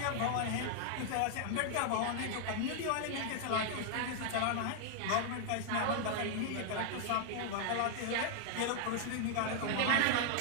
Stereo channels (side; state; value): both; different; correlation 0.00